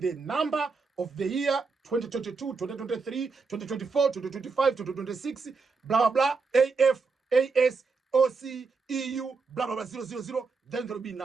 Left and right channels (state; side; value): quieter; left; 4.6 dB